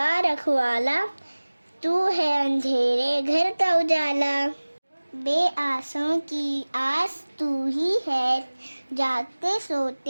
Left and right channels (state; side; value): inverted; both; correlation -1.00